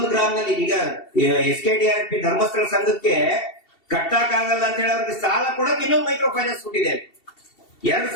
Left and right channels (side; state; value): right; late; 2.7 ms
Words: ಗ್ರಾಮದಲ್ಲಿ. ಈಗ SKDRDP ಧರ್ಮಸ್ಥಳ ಸಂಘಕ್ಕೆ ಕಟ್ಟಕ್ಕಾಗಲ್ಲ ಅಂತ ಹೇಳಿ ಅವ್ರಿಗೆ ಸಾಲ ಕೊಡಕ್ಕೆ ಇನ್ನೊಂದು ಮೈಕ್ರೋ ಫೈನಾನ್ಸ್ ಹುಟ್ಟಿದೆ.